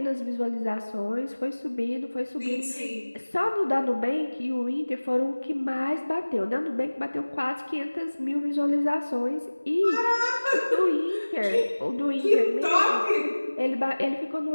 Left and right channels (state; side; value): inverted; both; correlation -1.00